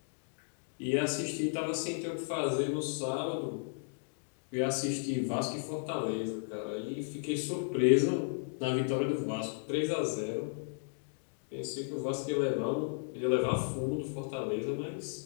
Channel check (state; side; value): silent; right; digital silence